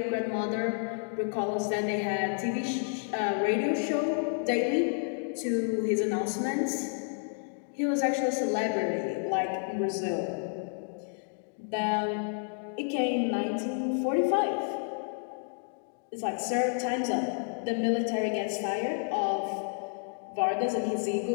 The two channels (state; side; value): silent; right; 58 dB below the other